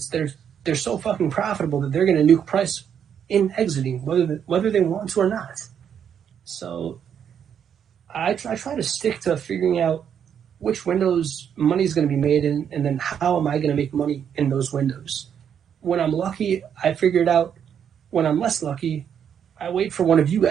they're so fucking profitable that they're going to nuke price in exiting, whether they want to or not. So I try to stick to figuring out which windows money is going to be made in, and then how am I going to make money in those windows. When I'm lucky, I figure it out. When I'm less lucky, I wait for one of you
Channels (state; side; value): quieter; left; 8.3 dB